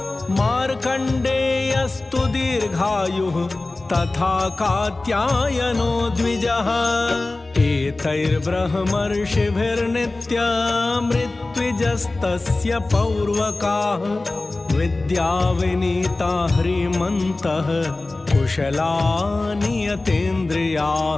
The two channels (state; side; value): quieter; right; 3.1 dB